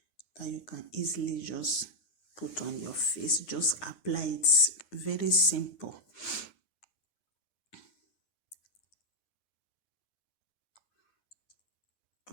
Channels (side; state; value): right; late; 9.7 ms